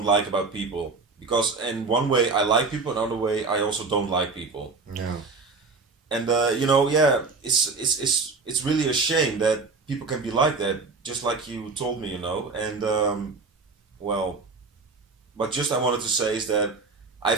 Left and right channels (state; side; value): quieter; left; 4.2 dB